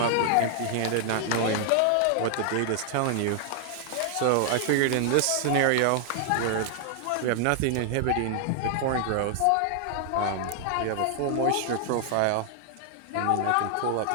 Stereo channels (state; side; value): different; both; correlation 0.00